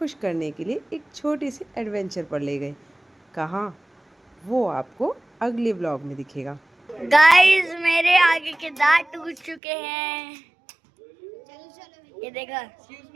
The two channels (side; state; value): left; drops out; at 9.6 s